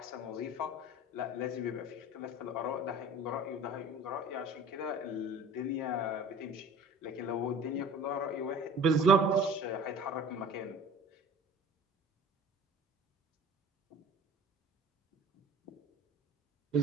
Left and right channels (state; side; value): normal; both; correlation 0.43